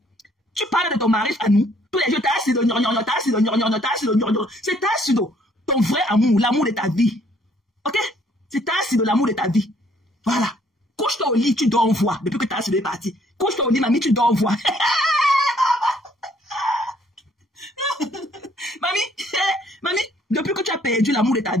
Tu parles de ton mari à nous. Tous les jours, t'as assis de c'est t'as assis de ton vrai amour, l'amour de ta vie. Ok? C'est t'as assis de l'amour de ta vie. Voilà. Couche-toi au lit, tu dors en voix. Depuis que t'as assis de parti. Couche-toi au lit, mamie, tu dors en voix. Mamie, depuis que tu as perdu l'amour de ta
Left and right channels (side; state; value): both; normal; correlation 0.64